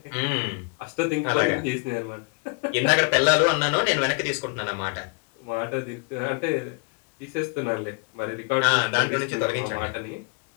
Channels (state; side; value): quieter; right; 33.4 dB